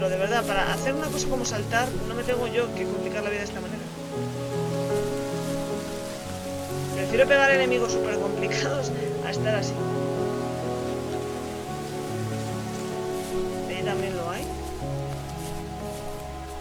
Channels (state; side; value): identical; both; correlation 1.00